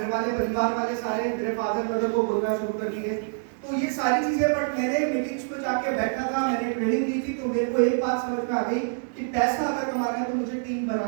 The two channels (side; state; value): left; silent; 61 dB below the other